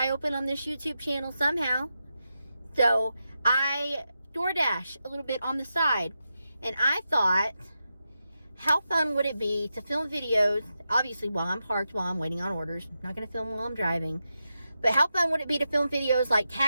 open on this YouTube channel somehow. So I DoorDash a little bit on the side, and I thought, how fun would it be to film videos, obviously while I'm parked, while I'm waiting on orders. I'm not going to film while I'm driving. But how fun would it be to film videos like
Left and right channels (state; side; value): inverted; both; correlation -0.89